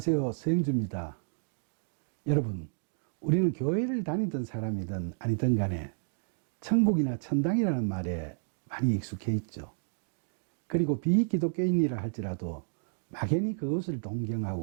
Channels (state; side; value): silent; left; digital silence